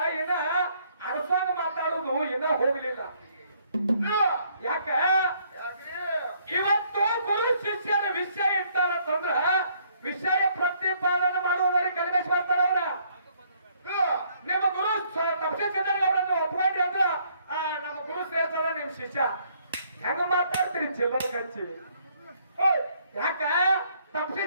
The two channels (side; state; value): both; inverted; correlation -0.66